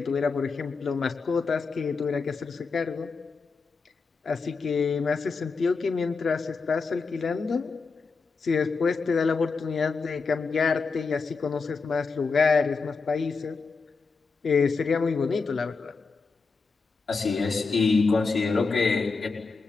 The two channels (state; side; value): quieter; right; 4.6 dB